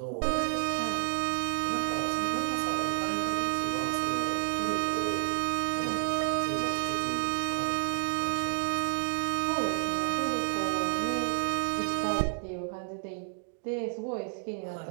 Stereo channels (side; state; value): left; silent; 58 dB below the other